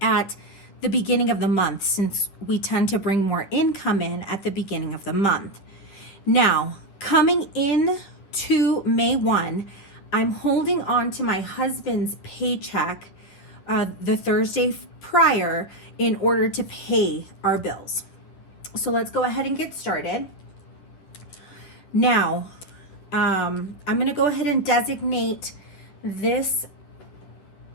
at the beginning of the month, since we tend to bring more income in at the beginning of the month. Now, coming in to May 1, I'm holding on to my husband's paycheck the Thursday prior in order to pay our bills. So let's go ahead and get started. Now, I'm going to go ahead and designate this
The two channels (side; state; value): right; late; 10 ms